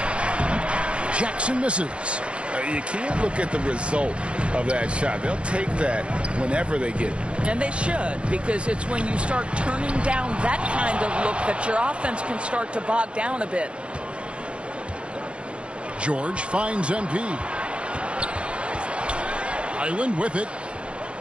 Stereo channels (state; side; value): late; left; 0.058 ms